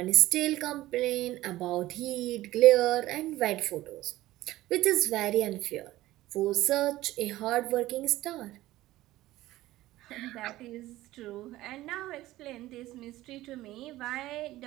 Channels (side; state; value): left; quieter; 16.3 dB